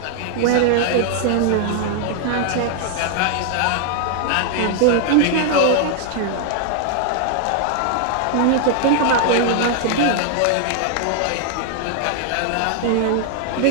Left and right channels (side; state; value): both; different; correlation 0.00